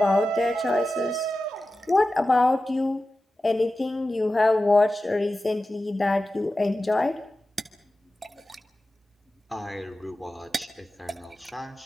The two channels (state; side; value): normal; both; correlation 0.94